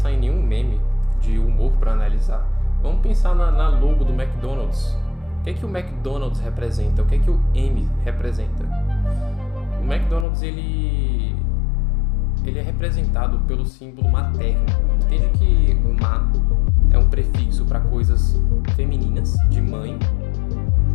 em nenhum meme de humor para analisar. Vamos pensar na logo do McDonald's. O que é que o McDonald's representa? O que é que o M representa? O McDonald's, ele é representado pelo símbolo materno. Entende que ma é um prefixo para coisas femininas, de mãe,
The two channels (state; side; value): drops out; right; at 10.2 s